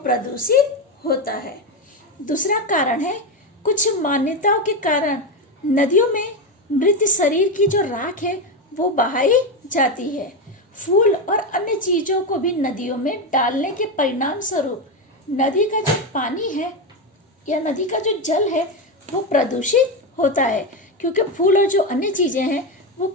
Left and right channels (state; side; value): normal; both; correlation 0.12